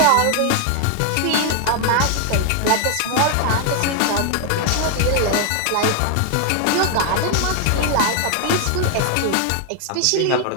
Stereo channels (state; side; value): different; both; correlation 0.00